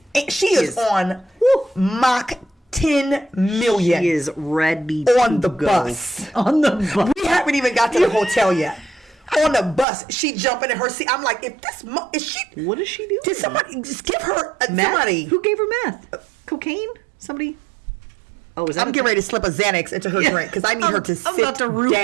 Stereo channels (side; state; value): left; drops out; at 9.9 s